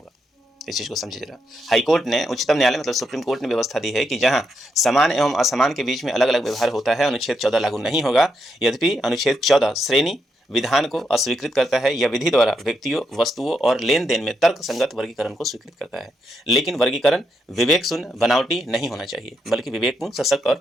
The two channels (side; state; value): both; normal; correlation 0.81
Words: इस चीज को समझिए जरा। हाईकोर्ट ने, उच्चतम न्यायालय मतलब सुप्रीम कोर्ट ने व्यवस्था दी है कि जहां समान एवं असमान के बीच में अलग अलग व्यवहार होता है, अनुच्छेद 14 लागू नहीं होगा। यद्यपि अनुच्छेद 14 श्रेणी विधान को अस्वीकृत करता है या विधि द्वारा व्यक्तियों, वस्तुओं और लेन देन में तर्क संगत वर्गीकरण को स्वीकृत करता है, लेकिन वर्गीकरण विवेक शून्य, बनावटी नहीं होना चाहिए, बल्कि विवेकपूर्ण, सशक्त और